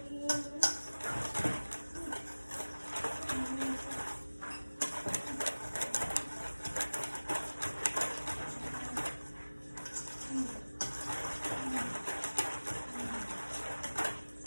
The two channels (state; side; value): inverted; both; correlation -1.00